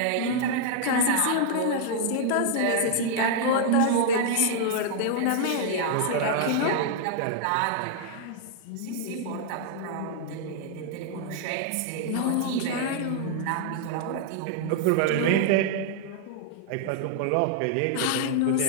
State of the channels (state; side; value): different; both; correlation -0.01